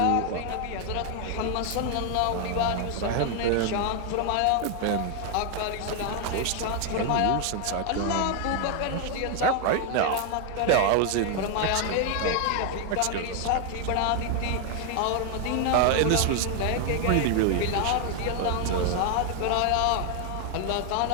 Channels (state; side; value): different; both; correlation 0.00